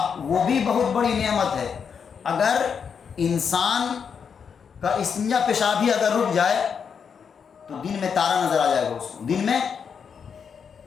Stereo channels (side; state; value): right; quieter; 6.7 dB